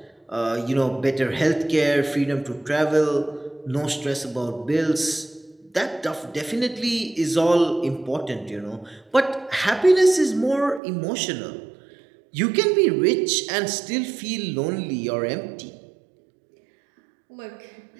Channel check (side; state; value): left; drops out; at 10.8 s